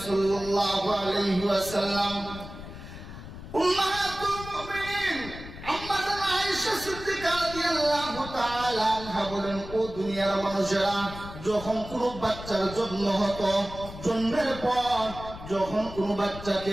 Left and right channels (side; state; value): left; noise; rumble, 12 dB below the sound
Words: صلى الله عليه وسلم বলেন, ও দুনিয়ার মানুষেরা, যখন কোনো বাচ্চার জন্ম হতো, জন্মের পর যখন কোনো